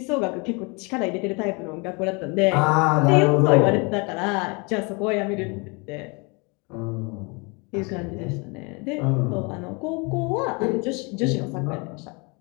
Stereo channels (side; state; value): right; quieter; 30.3 dB